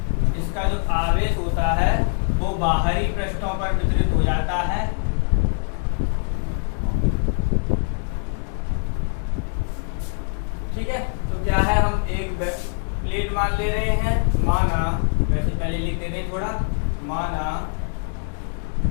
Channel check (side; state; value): right; silent; 59 dB below the other